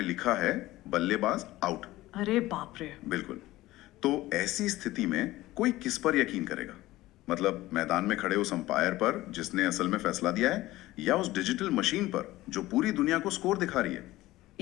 लिखा है बल्लेबाज आउट। अरे बाप रे। बिल्कुल। तो ऐसी स्थिति में कोई किस पर यकीन करेगा? मतलब मैदान में खड़े उस अंपायर पर जिसने असल में फैसला दिया है, या उस डिजिटल मशीन पर जो पूरी दुनिया को स्कोर दिखा रही है?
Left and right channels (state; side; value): quieter; right; 17.2 dB